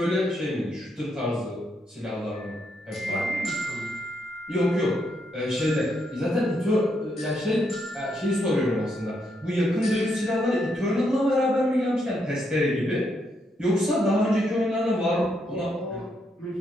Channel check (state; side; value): normal; both; correlation 0.78